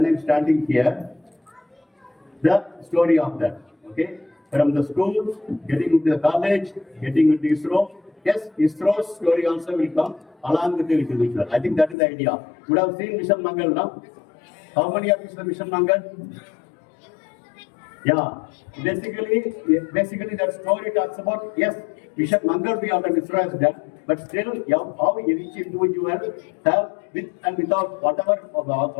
I'm standing here. The story of that. Okay, from the school, getting into the college, getting into ISRO. Yes, ISRO's story also will come along with the individual. I think that is the idea. You would have seen Mission Mangal now. How many of you saw Mission Mangal? Yeah. Basically that story talks about, yes, Mission Mangal we have done, ISRO has done, but still how each individual have with and without whatever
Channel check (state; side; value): drops out; right; at 12.0 s